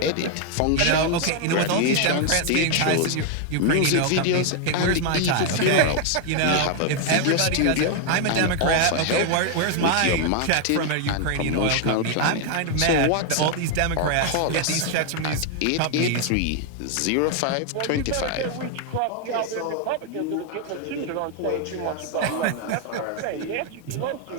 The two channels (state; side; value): different; both; correlation 0.00